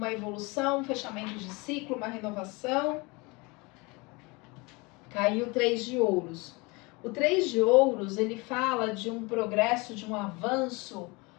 evolução, um fechamento de ciclo, uma renovação. Caiu o 3 de ouros. O 3 de ouros, ele fala de um progresso, de um avanço,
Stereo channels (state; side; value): quieter; right; 26.3 dB